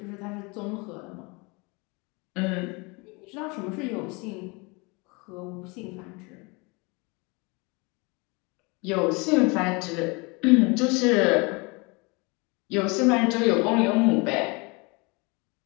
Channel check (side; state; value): right; quieter; 28.3 dB